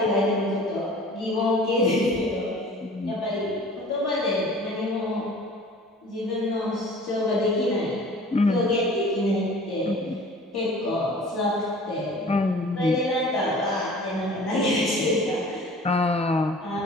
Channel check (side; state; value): both; normal; correlation 0.46